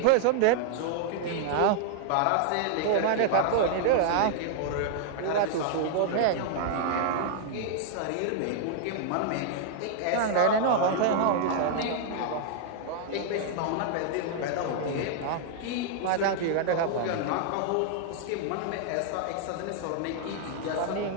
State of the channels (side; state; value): both; different; correlation -0.01